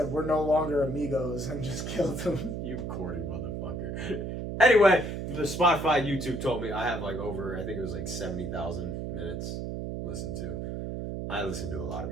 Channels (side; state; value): right; noise; hum, 4 dB below the sound